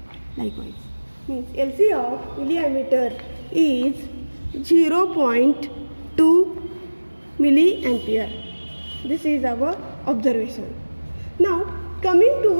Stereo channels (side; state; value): both; inverted; correlation -1.00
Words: Likewise, means LC of milliammeter is 0.2 milliampere. This is our observation. Now coming